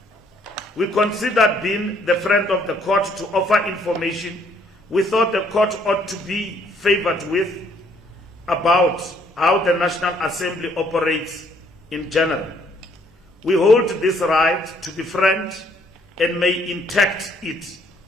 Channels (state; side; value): normal; both; correlation 0.65